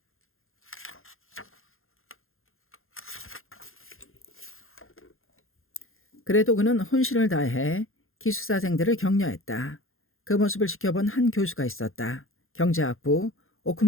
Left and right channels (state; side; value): late; right; 0.60 ms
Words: 그래도 그는 혼신을 다해 기숙사생들을 격려했다. 그 모습을 지켜본 한 교수가 있었다. 경제학부